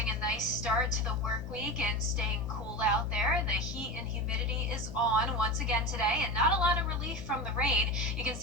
a nice start to the work week and staying cool out there. The heat and humidity is on once again today, and not a lot of relief from the rain. You can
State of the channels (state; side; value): noise; left; hum, 3 dB below the sound